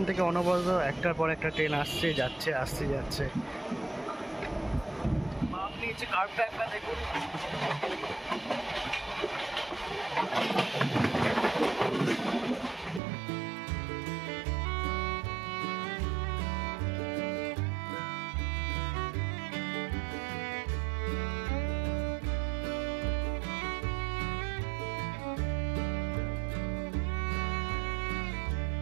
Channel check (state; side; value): drops out; left; at 13.0 s